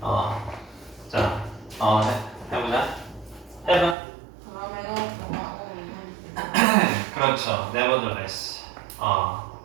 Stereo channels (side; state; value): left; drops out; at 4.0 s